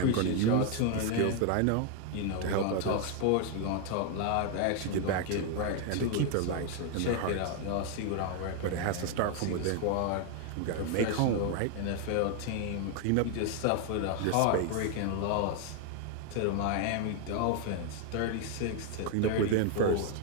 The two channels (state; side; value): different; both; correlation 0.01